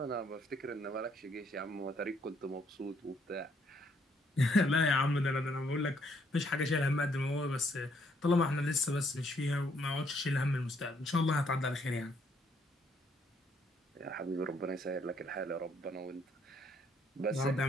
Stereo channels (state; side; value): normal; both; correlation 0.69